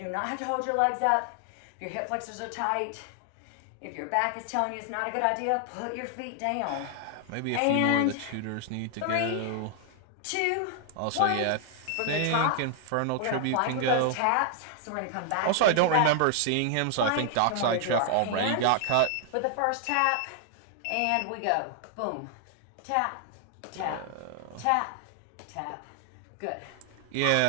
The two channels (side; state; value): both; different; correlation 0.00